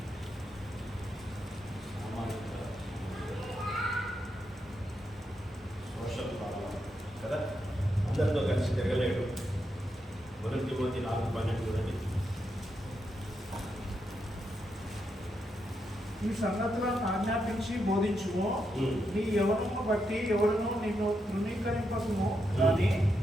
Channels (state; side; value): normal; both; correlation 0.83